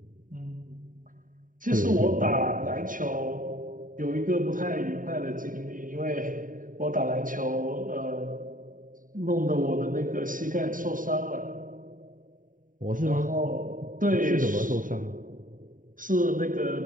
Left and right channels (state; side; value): late; left; 0.39 ms